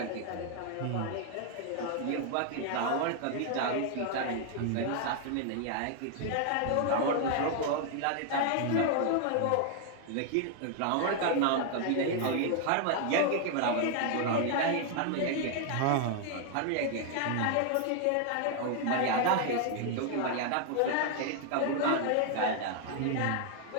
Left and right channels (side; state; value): both; different; correlation 0.00